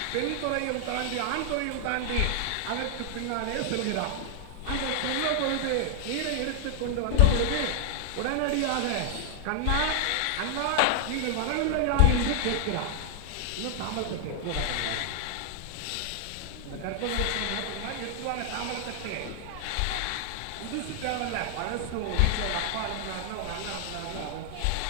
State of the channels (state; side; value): different; both; correlation 0.00